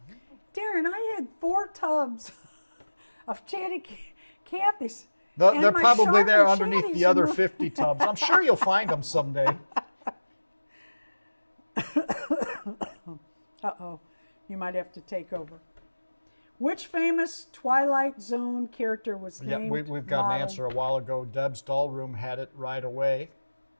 Darren, I had 4 tubs of Chatty Cathy's. They're probably there underneath Chatties the other 50 tubs. I'm sure you'll find them someday. Uh-oh. You might have to take over. Which famous Twilight Zone character was Yeah, named we've got an modeled- answer a while ago. Deb's doll room had it right away.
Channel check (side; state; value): both; inverted; correlation -1.00